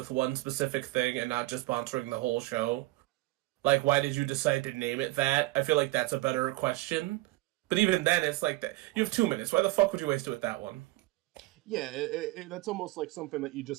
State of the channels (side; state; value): left; quieter; 19.5 dB